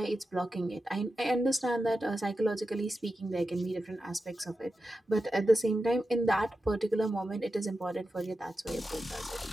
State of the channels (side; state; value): both; normal; correlation 0.91